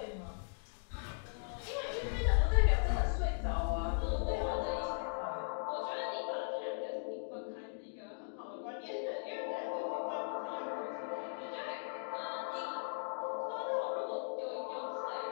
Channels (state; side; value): silent; right; digital silence